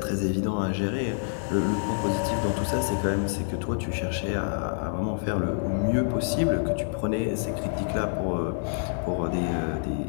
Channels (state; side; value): silent; right; digital silence